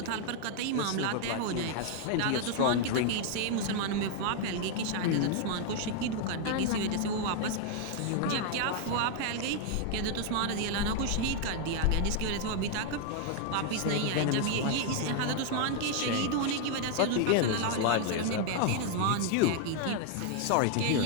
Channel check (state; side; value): different; both; correlation 0.00